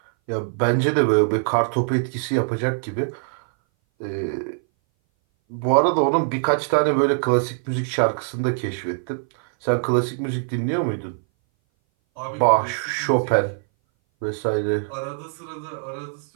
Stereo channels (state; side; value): silent; left; 59 dB below the other